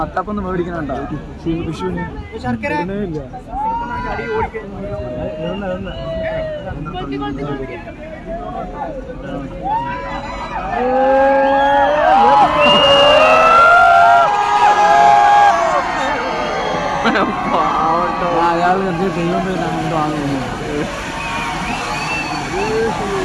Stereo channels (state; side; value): identical; both; correlation 1.00